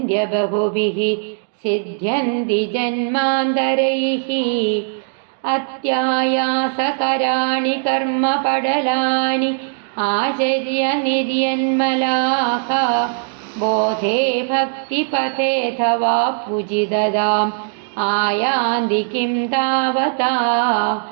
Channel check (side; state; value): left; silent; digital silence